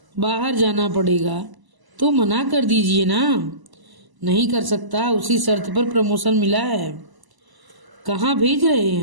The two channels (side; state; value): left; late; 1.0 ms